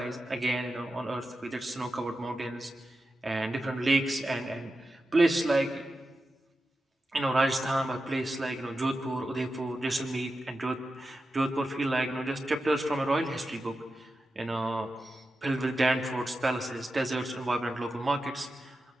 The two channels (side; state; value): both; normal; correlation 0.91